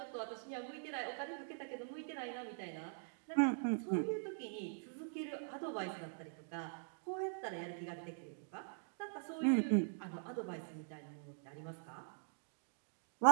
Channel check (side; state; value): left; silent; digital silence